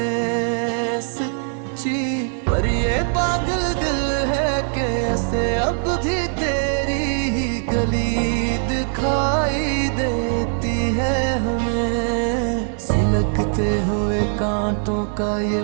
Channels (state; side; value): silent; left; digital silence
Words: सच्ची, पर ये पागल दिल है कि ऐसे अब भी तेरी ही गली दिखाई देती है हमें। सुलगते हुए कांटों का ये